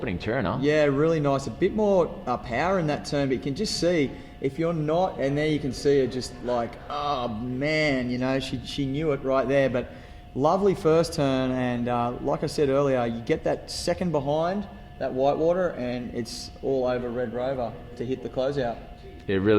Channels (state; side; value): identical; both; correlation 1.00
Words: turn, huh? Yeah, really nice. A bit more power in that turn, but you can just see if you're not, and there you can see her just like, oh man, she knew it right there. But lovely first turn, and like I said earlier, you get that second behind that whitewater, and it's all over Red Rover to hit the closeout. It